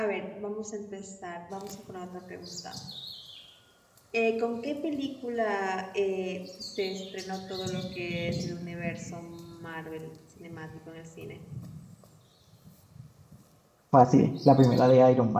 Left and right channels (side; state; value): both; identical; correlation 1.00